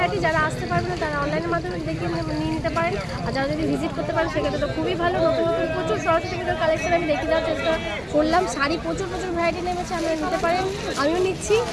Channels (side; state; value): both; identical; correlation 1.00